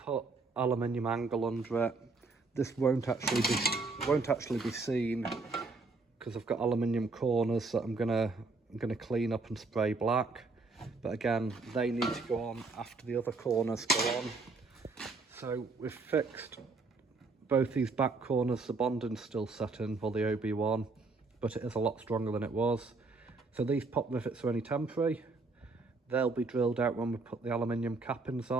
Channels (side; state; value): left; quieter; 3.8 dB